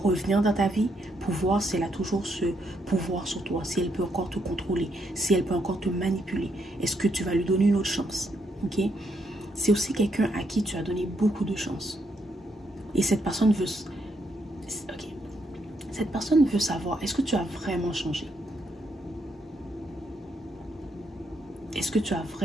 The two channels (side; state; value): both; normal; correlation 0.77